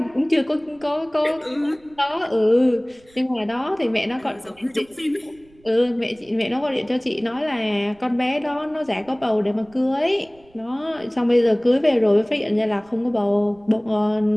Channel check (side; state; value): right; noise; rumble, 29 dB below the sound